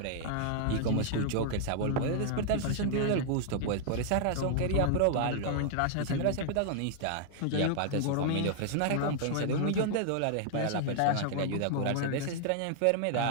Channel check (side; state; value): both; different; correlation 0.00